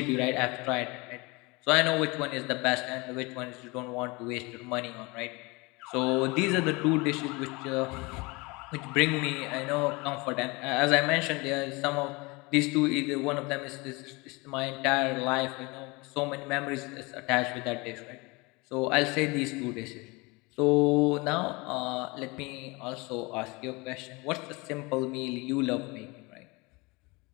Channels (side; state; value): right; quieter; 25.7 dB